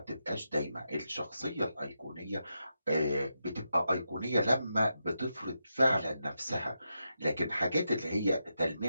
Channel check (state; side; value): inverted; both; correlation -0.86